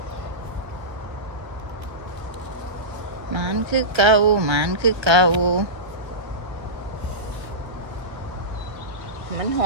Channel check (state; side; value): late; left; 1.3 ms